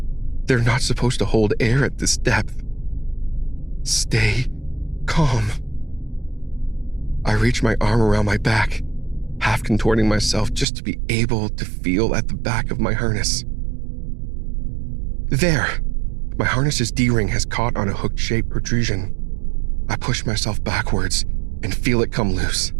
They're not supposed to hold air at this depth. Stay calm. I reach my arm around my back, half contorting myself just to be able to feel at the back of my harness. There! My harness's D-ring has caught on a hook-shaped protrusion. I push myself backwards and feel it come loose.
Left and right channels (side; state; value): left; drops out; at 10.7 s